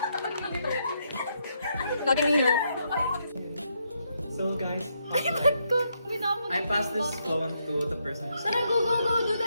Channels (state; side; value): inverted; both; correlation -0.78